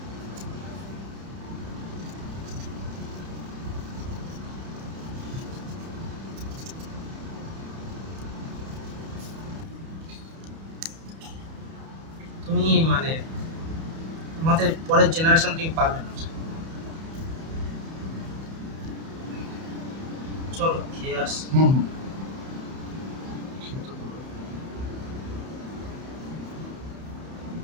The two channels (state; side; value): late; left; 31 ms